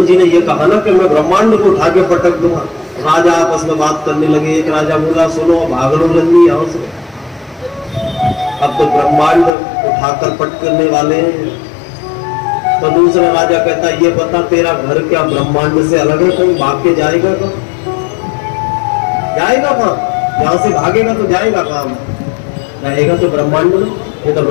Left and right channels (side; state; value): right; drops out; at 9.5 s